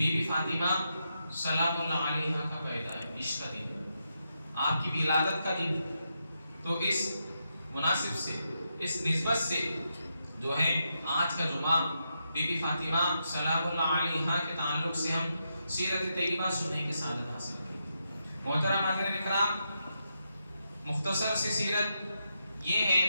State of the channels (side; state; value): both; inverted; correlation -0.84